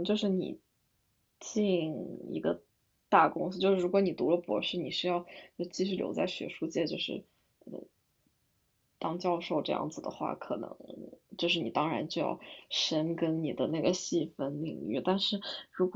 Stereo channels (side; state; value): both; identical; correlation 1.00